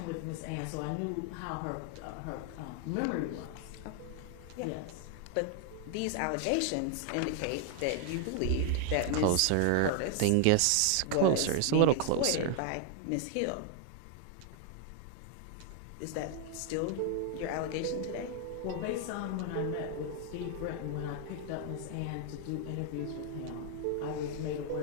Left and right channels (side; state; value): both; different; correlation 0.00